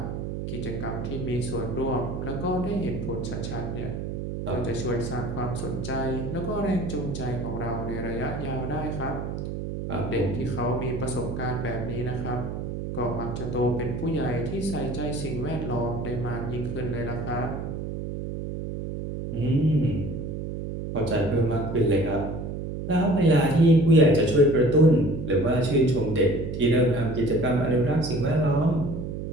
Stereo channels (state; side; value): noise; right; hum, 5 dB below the sound